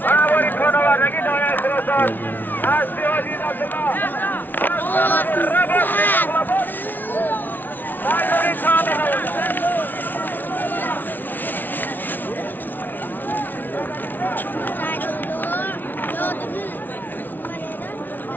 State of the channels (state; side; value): late; right; 0.087 ms